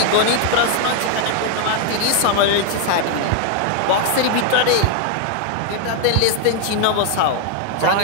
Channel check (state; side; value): different; both; correlation 0.00